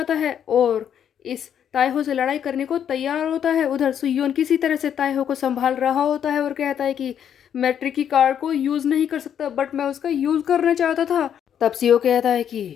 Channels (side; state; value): right; quieter; 9.0 dB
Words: है और इस ताएहो से लड़ाई करने को तैयार होता है। उधर सुयोन किसी तरह से ताएहो को संभाल रहा होता है और कहता है कि मैं ट्रिकी कार्ड को यूज़ नहीं कर सकता, बट मैं उसका यूज़ करना चाहता था। तब सियो कहता है कि